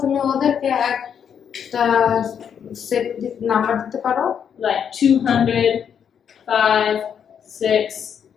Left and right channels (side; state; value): right; quieter; 7.9 dB